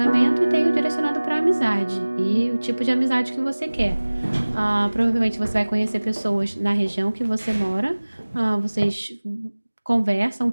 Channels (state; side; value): inverted; both; correlation -1.00